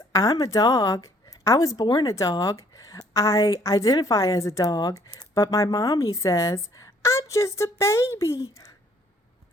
"I'm a dog. I was born a dog. I identify as a dog, but my mommy says, I'm just a baby."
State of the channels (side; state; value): both; normal; correlation 0.62